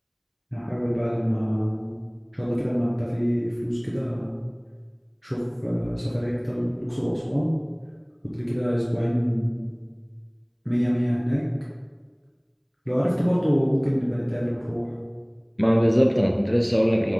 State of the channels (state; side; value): identical; both; correlation 1.00